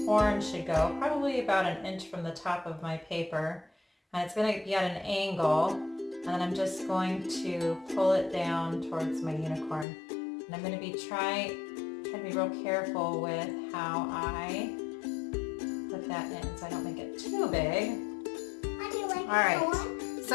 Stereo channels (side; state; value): right; drops out; at 9.9 s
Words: horn should go, probably about an inch from the top of my paper. And it's going to be at an angle, and then I'm just going to pull it down towards my unicorn. And I'm going to be trying to be real careful with how I put that in so I don't make it too big. How do you like All right,